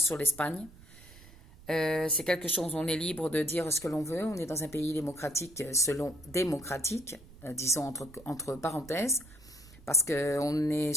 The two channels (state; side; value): noise; right; rumble, 21 dB below the sound